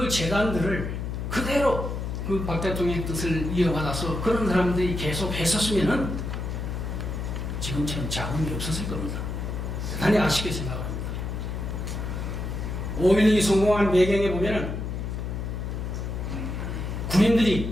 재단들을 그대로 그 박 대통령의 뜻을 이어받아서 그런 사람들이 계속 했었으면은 지금처럼 자금이 없었을 겁니다. 대단히 아쉽게 생각합니다. 5.16이 성공한 배경에 보면은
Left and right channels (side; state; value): left; noise; hum, 4 dB below the sound